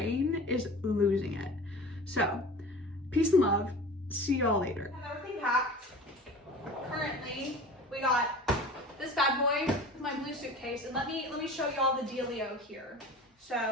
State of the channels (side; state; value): both; normal; correlation 0.38